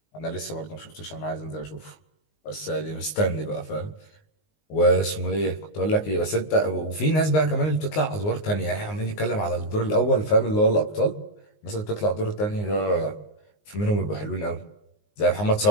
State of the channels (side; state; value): right; late; 19 ms